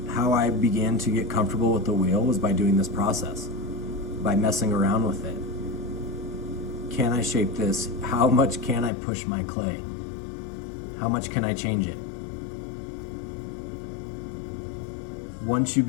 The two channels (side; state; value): right; drops out; at 8.9 s